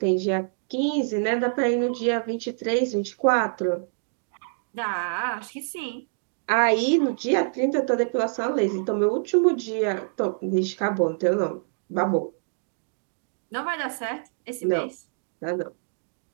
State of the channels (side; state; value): left; silent; digital silence